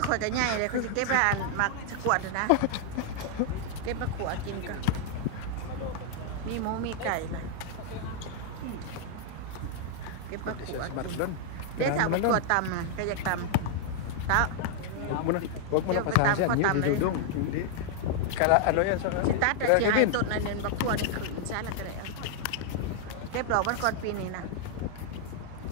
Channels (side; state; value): both; different; correlation 0.00